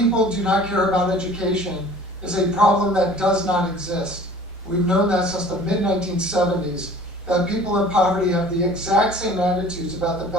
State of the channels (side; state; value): both; normal; correlation 0.47